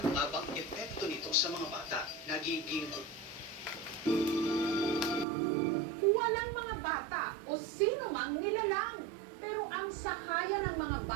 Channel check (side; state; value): left; drops out; at 5.2 s